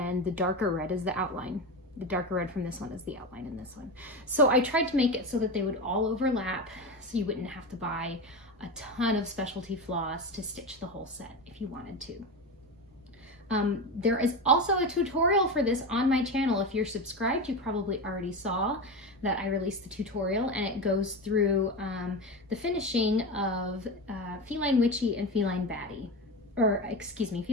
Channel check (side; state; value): both; normal; correlation 0.21